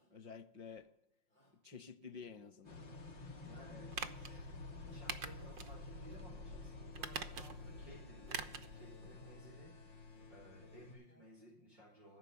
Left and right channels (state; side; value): late; left; 5.6 ms